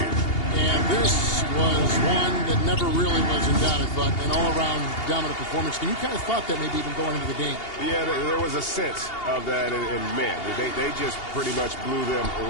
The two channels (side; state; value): right; late; 2.8 ms